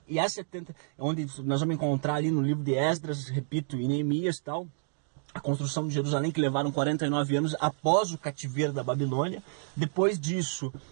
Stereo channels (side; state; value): left; silent; digital silence